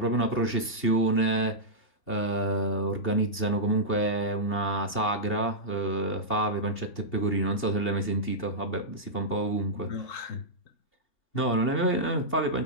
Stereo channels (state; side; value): late; right; 2.7 ms